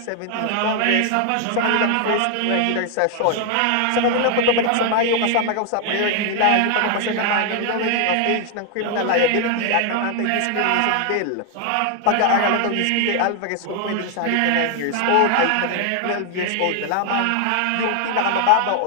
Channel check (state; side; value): different; both; correlation 0.00